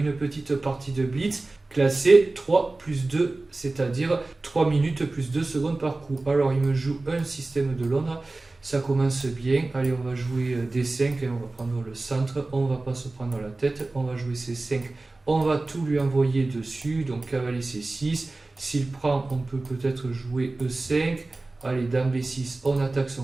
petite partie de Blitz classée 3 plus 2, c'est-à-dire 3 minutes plus 2 secondes par coup. Alors il me joue un système de Londres, ça commence bien. Allez, on va jouer D5 et on va prendre le centre, on va pas se prendre la tête, on va jouer C5, on va tout lui envoyer dessus, donc cavalier C6, s'il prend on peut peut-être jouer E5. Allez, dame B6, on attaque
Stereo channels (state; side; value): quieter; left; 3.1 dB